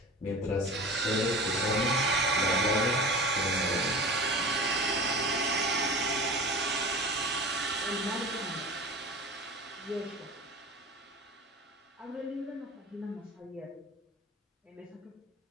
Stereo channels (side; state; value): both; normal; correlation 0.35